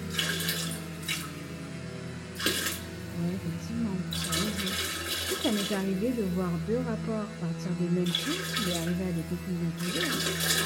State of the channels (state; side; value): identical; both; correlation 1.00